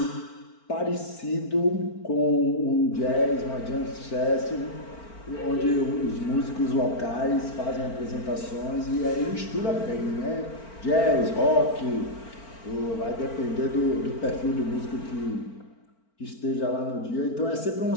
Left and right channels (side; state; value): right; late; 4.4 ms